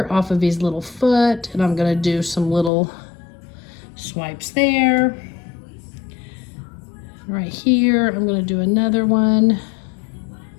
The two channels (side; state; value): right; drops out; at 2.7 s